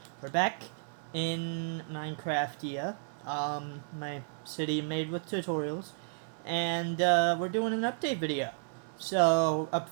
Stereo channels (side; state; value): left; silent; 56 dB below the other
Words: We're back in Minecraftia, my city made with tutorials, and, we're doing an update video. So, up